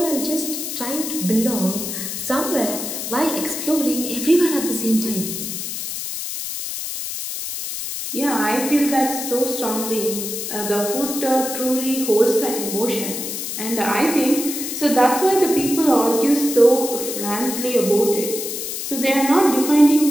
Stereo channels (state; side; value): noise; left; hiss, 5 dB below the sound